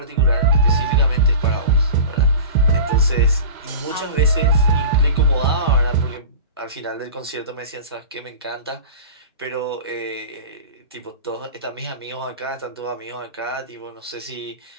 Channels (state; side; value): inverted; both; correlation -0.34